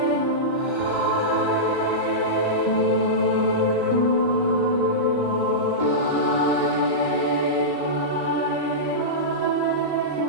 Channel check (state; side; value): late; left; 3.4 ms